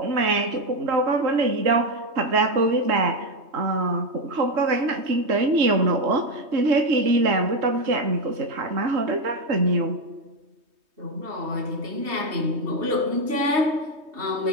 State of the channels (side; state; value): left; late; 3.2 ms